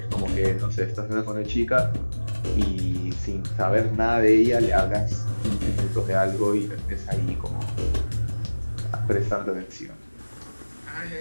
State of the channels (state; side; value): inverted; both; correlation -1.00